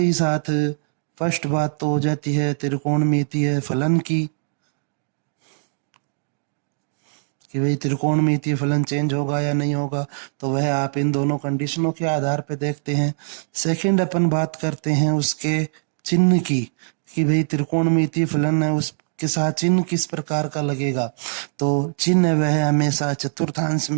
साथ फर्स्ट बात तो हो जाती है त्रिकोणमितीय फलन की, कि भाई त्रिकोणमितीय फलन चेंज होगा या नहीं होगा, तो वह आप इन दोनों कंडीशनों के आधार पे देखते हैं। सेकंड अपन बात करते हैं उसके चिन्ह की, कि भाई त्रिकोणमितीय फलन है उसके साथ चिन्ह किस प्रकार का लगेगा। तो चिन्ह वह हमेशा चतुर्थांश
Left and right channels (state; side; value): silent; left; digital silence